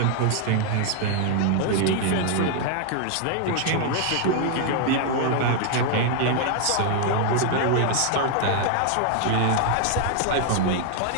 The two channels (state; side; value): different; both; correlation 0.00